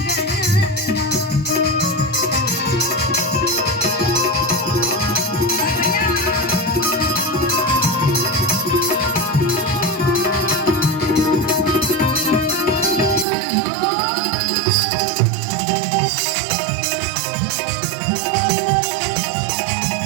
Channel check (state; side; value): drops out; left; at 13.2 s